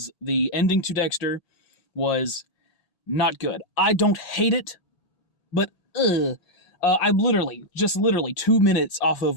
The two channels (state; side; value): late; right; 1.8 ms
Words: the ending to Dexter was not good. I don't hate it, but I'm literally 2 minutes off